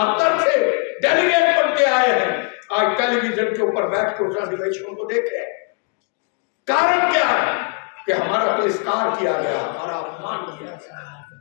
से डेलीगेट बन के आए हैं, आज टेलीविजन के ऊपर बैठ के उस अधिवेशन को देखे। कारण क्या है कि हमारा तिरस्कार किया गया, हमारा अपमान किया गया।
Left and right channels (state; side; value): quieter; right; 33.1 dB